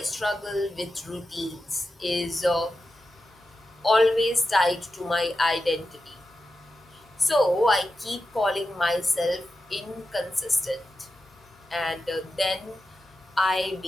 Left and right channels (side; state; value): both; normal; correlation 0.90